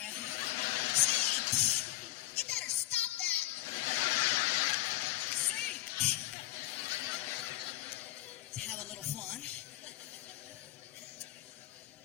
See, you better stop that. See, to have a little fun.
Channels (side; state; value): right; quieter; 16.5 dB